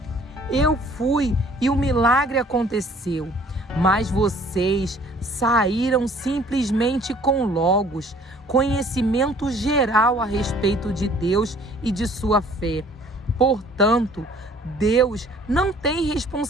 Eu fui e o milagre aconteceu. Mas vocês saíram simplesmente com Logos, conhecimento geral a respeito de Deus e de sua fé. Portanto, Deus não tem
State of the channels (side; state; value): both; normal; correlation 0.55